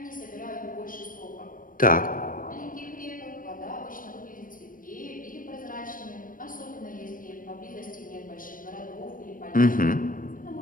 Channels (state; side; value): late; right; 0.40 ms